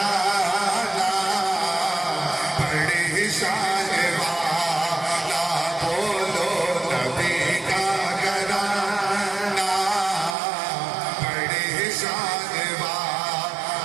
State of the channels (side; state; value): left; drops out; at 10.4 s